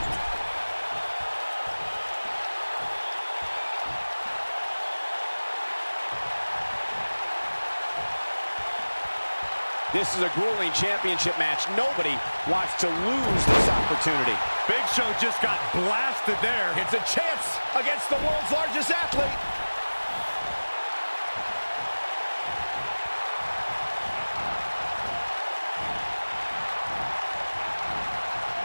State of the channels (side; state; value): both; inverted; correlation -1.00